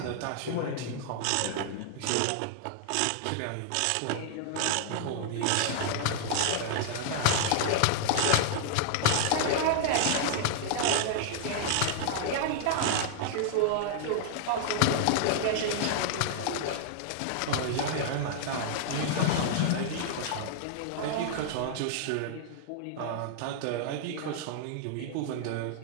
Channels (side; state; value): both; different; correlation -0.01